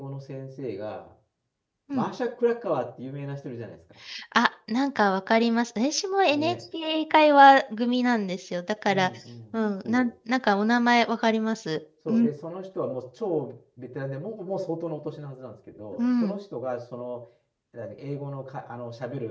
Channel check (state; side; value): identical; both; correlation 1.00